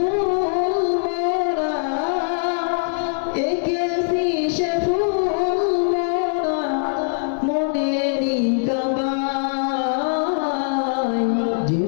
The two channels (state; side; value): silent; right; digital silence